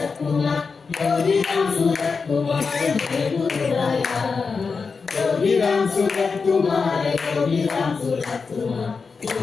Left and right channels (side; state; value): right; quieter; 4.9 dB